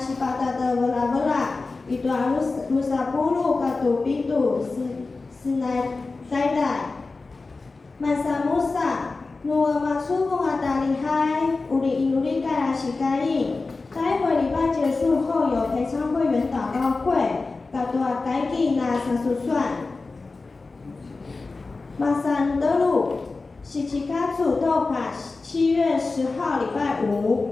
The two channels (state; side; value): quieter; right; 3.8 dB